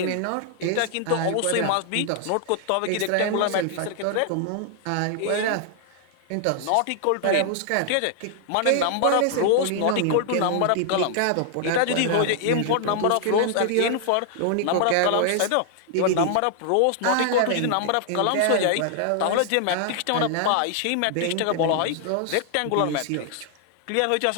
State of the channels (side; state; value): both; different; correlation 0.00